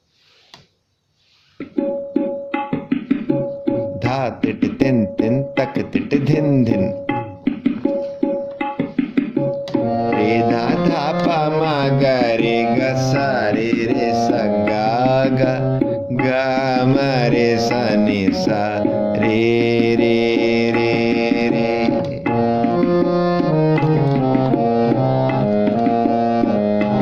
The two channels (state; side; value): identical; both; correlation 1.00